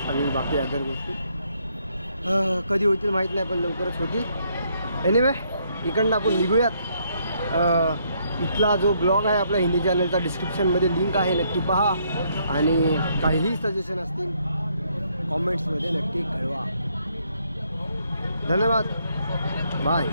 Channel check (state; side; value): inverted; both; correlation -0.71